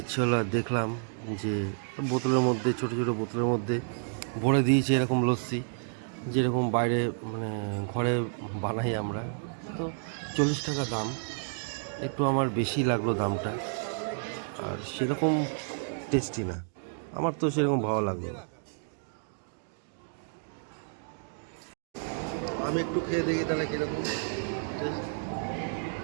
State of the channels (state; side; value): silent; left; 57 dB below the other